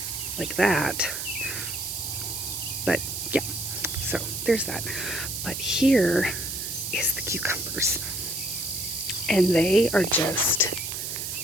like that. But yeah, so there's that. But here is the cucumbers, and they are just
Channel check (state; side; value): noise; right; hiss, 4 dB below the sound